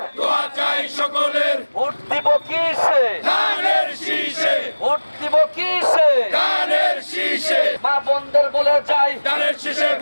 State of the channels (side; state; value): both; inverted; correlation -1.00